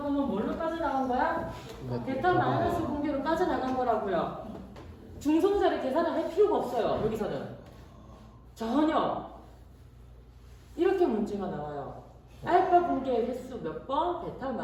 뭘로 빠져나간 거야? 베타 마이너스 붕괴로 빠져나간 거라고요. 중성자를 계산을 할 필요가 없어요. 여기서는 전혀 이렇게 문제가 나와요. 알파 붕괴의 횟수 몇 번, 베타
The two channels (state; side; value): identical; both; correlation 1.00